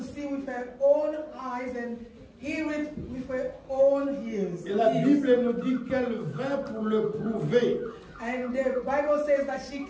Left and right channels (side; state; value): both; identical; correlation 1.00